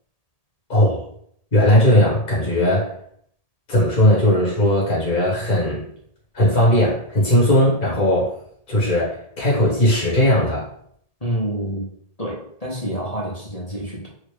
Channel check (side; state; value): right; late; 1.8 ms